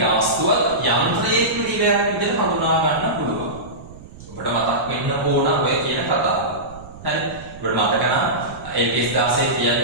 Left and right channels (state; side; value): noise; right; rumble, 17 dB below the sound